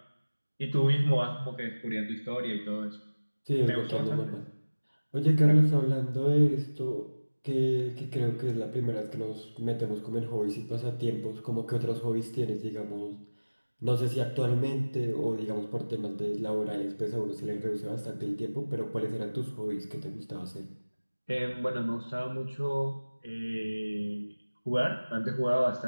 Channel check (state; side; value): inverted; both; correlation -1.00